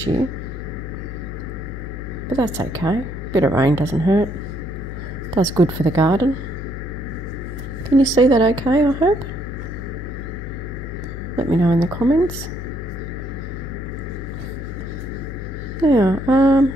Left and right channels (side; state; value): left; noise; hum, 8 dB below the sound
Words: year, but that's okay. A bit of rain doesn't hurt. Does good for the garden. Can you see that okay, I hope? Let me know in the comments. Now,